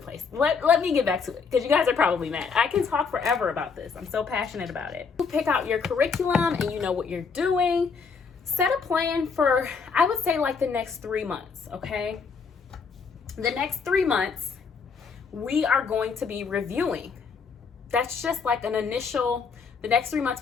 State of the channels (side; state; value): right; quieter; 5.5 dB